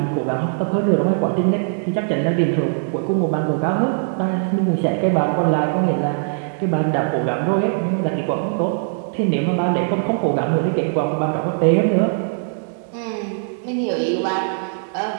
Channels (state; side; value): silent; left; 65 dB below the other